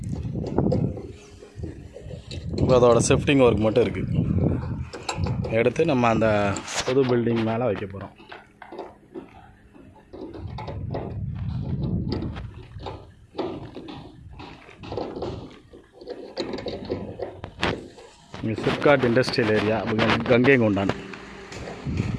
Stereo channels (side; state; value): both; identical; correlation 1.00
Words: இப்போ அதோட ஷிஃப்டிங் ஒர்க் மட்டும் இருக்குது. எடுத்து நம்ம அந்த புது பில்டிங் மேலே வைக்க போகிறோம். SIPCOT industrial area, Gangaikondan.